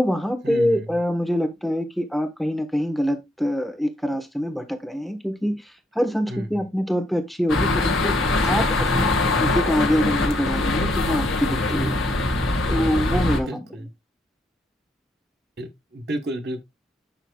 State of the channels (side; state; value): both; normal; correlation 0.76